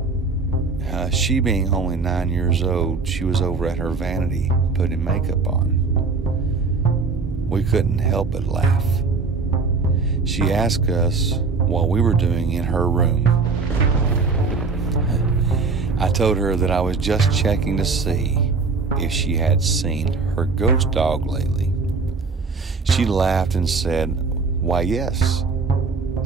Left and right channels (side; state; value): left; quieter; 4.3 dB